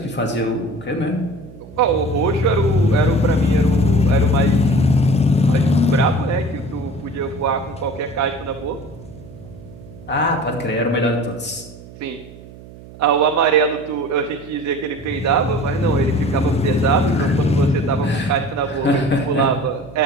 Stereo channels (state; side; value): noise; right; hum, 18 dB below the sound